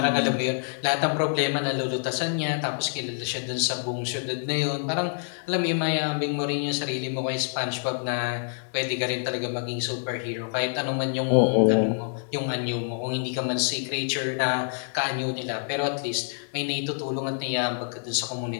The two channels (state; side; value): silent; right; digital silence